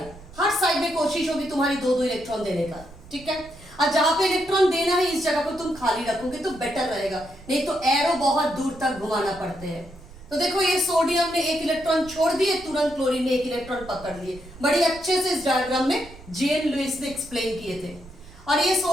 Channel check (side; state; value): right; noise; rumble, 19 dB below the sound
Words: हर साइड में कोशिश होगी तुम्हारी 2-2 इलेक्ट्रॉन देने का, ठीक है। और जहां पे इलेक्ट्रॉन देना है इस जगह को तुम खाली रखोगे तो बेटर रहेगा, नहीं तो एरो बहुत दूर तक घुमाना पड़ते हैं। तो देखो ये सोडियम ने एक इलेक्ट्रॉन छोड़ दिए, तुरंत क्लोरीन ने एक इलेक्ट्रॉन पकड़ लिए। बड़ी अच्छे से इस डायग्राम में G.N. लुईस ने एक्सप्लेन किए थे। और ये